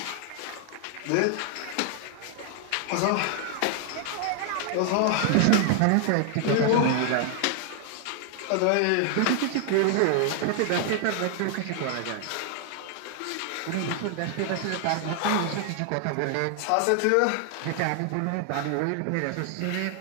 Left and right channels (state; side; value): different; both; correlation 0.00